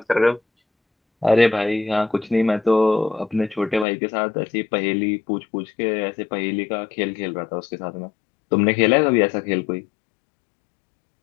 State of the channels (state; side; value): drops out; right; at 3.9 s